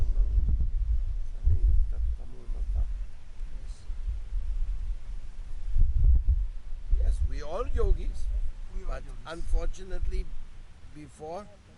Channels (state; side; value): identical; both; correlation 1.00